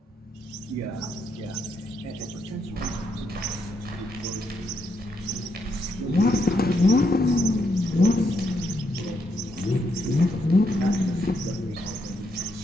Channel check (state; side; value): normal; both; correlation 0.78